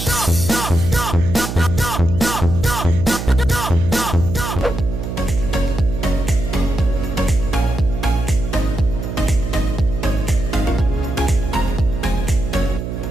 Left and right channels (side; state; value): right; noise; hum, 5 dB below the sound